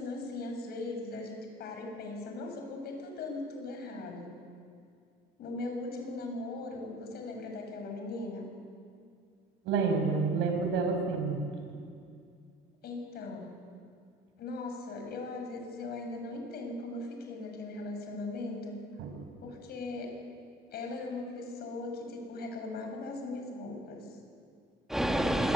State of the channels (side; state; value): both; normal; correlation 0.47